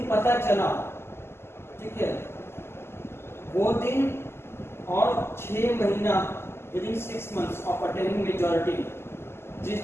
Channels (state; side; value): late; right; 0.12 ms